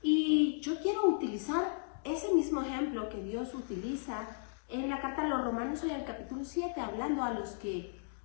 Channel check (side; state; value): right; silent; digital silence